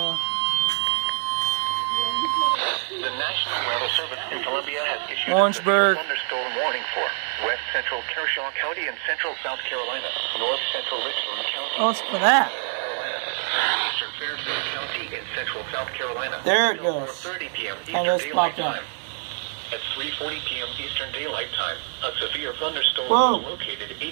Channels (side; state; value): left; silent; 62 dB below the other